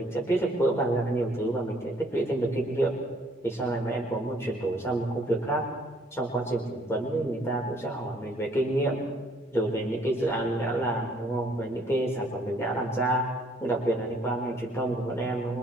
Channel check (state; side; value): normal; both; correlation 0.63